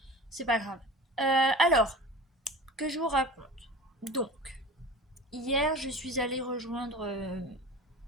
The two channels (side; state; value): both; normal; correlation 0.37